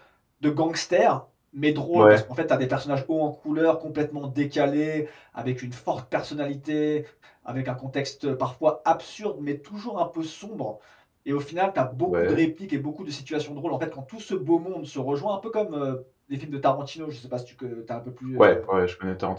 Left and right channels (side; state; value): both; identical; correlation 1.00